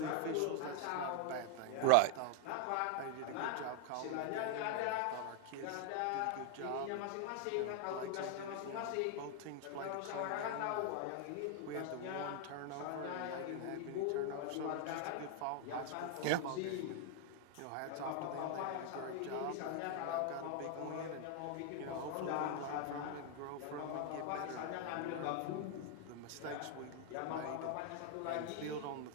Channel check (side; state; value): both; different; correlation 0.00